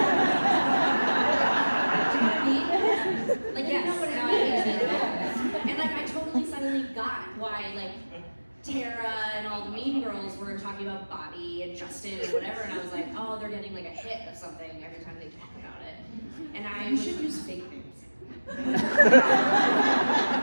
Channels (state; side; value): inverted; both; correlation -1.00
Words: Like, yeah, no, and like I totally suddenly got why like Tara and all the mean girls were talking about Bobby and Justin and whatever, and I was like, oh, they're getting like a hit of something every time they talk about it. And You should use fake names. Well,